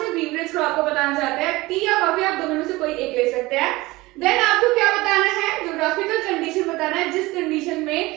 बीवरेज क्रॉप को बताना चाहते हैं, टी या कॉफी, आप दोनों में से कोई एक ले सकते हैं। देन आपको क्या बताना है, ज्योग्राफिकल कंडीशन बताना है, जिस कंडीशन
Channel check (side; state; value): left; quieter; 20.6 dB